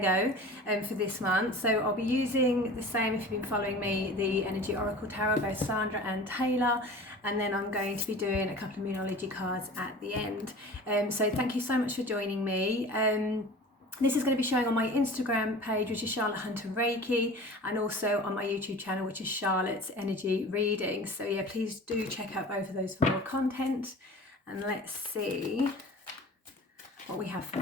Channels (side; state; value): both; normal; correlation 0.40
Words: for this month. So I'll be using the same, if you've been following me, the Energy Oracle Tarot, both Sandra and Taylor, and then I'm going to be doing a couple of Moonology cards at the end. So thank you so much for joining me. This is going to be showing on my Instagram page, which is Charlotte Hunter Reiki, and also on my YouTube channel, which is Charlotte's Energy Reading. So yeah, please do check out both of those for more content. And let's see what we have for